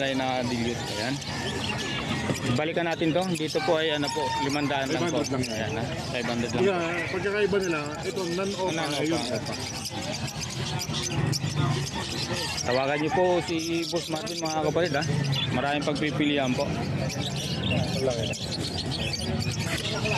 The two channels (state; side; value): identical; both; correlation 1.00